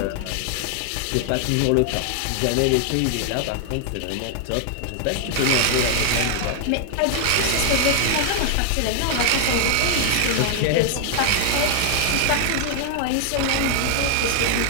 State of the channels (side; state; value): both; different; correlation 0.00